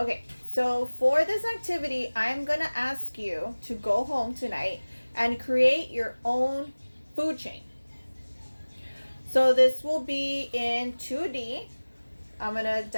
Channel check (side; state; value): both; inverted; correlation -1.00